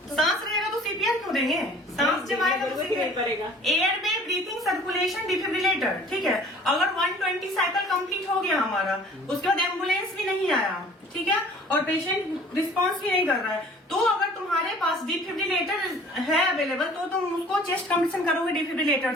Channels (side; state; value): both; normal; correlation 0.49